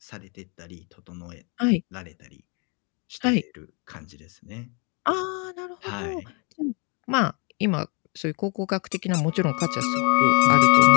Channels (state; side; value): quieter; right; 33.9 dB